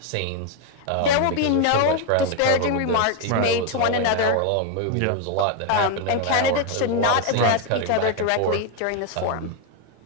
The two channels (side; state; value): both; different; correlation 0.01